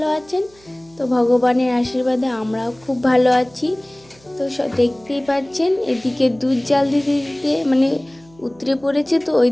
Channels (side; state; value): right; noise; hum, 28 dB below the sound